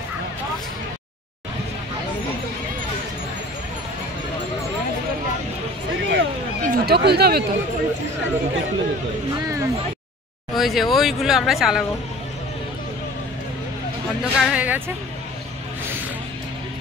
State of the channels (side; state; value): both; normal; correlation 0.44